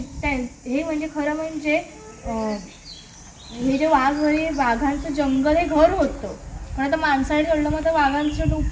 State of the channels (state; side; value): identical; both; correlation 1.00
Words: हे म्हणजे खरं म्हणजे हे जे वाघ हे वाघांचं जंगल हे घर होतं. पण आता माणसाने तोडलं मग तर वाघांचं